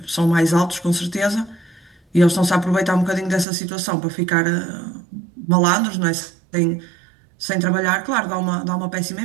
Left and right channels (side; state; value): left; drops out; at 3.5 s